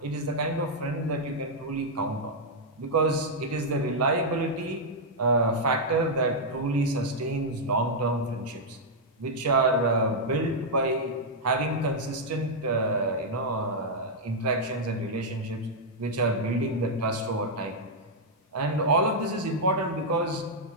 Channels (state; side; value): normal; both; correlation -0.04